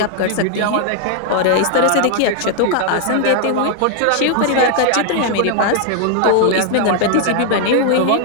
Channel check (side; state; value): both; different; correlation 0.00